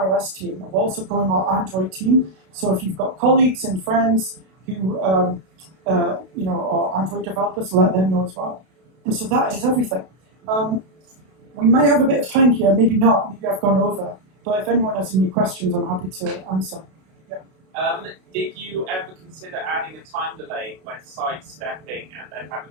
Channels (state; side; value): late; left; 32 ms